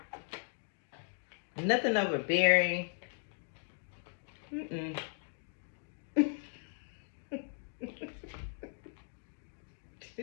Nothing overbearing. Mm-mm.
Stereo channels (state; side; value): silent; right; 53 dB below the other